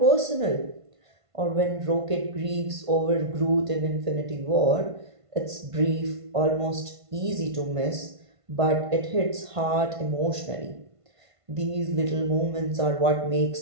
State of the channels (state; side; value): late; left; 1.5 ms